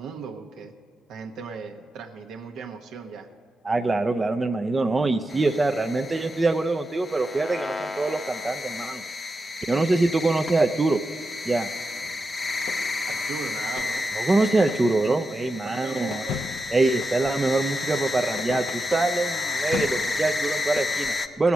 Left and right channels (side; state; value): both; normal; correlation 0.89